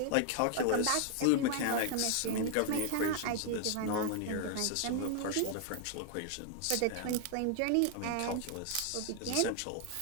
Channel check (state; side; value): different; both; correlation 0.00